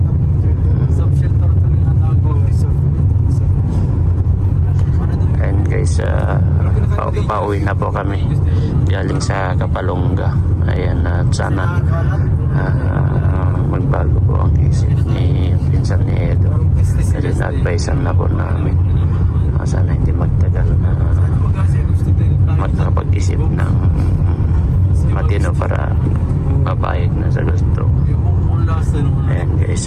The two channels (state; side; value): identical; both; correlation 1.00